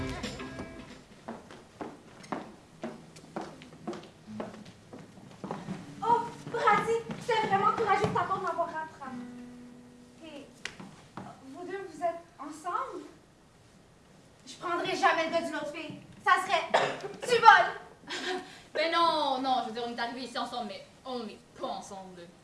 Oh, Brady, c'est vraiment courageux de ta part de m'avoir rattrapé. Et vous deux, vous êtes ensemble? Je prendrai jamais le gars d'une autre fille. Ça serait du vol! Ben non, non, je veux dire, on est arrivés ici ensemble, mais on n'est pas ensemble.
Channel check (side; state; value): both; identical; correlation 1.00